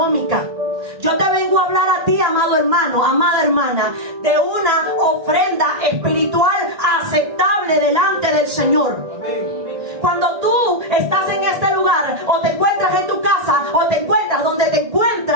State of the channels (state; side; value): late; left; 1.8 ms